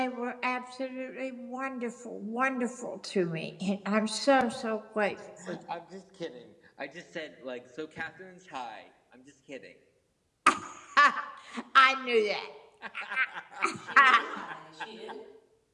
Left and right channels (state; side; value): identical; both; correlation 1.00